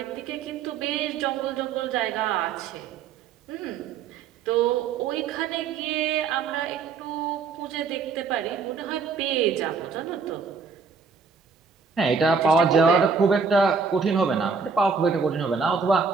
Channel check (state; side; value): quieter; left; 5.2 dB